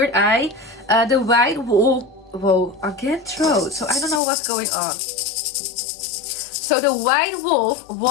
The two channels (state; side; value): drops out; right; at 4.2 s